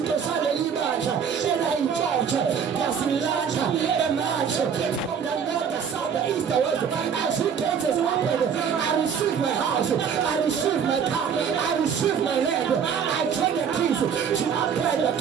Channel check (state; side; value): quieter; left; 7.2 dB